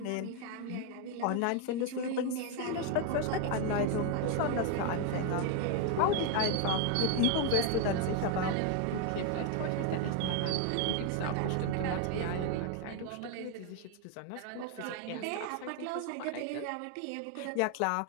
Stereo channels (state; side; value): different; both; correlation 0.01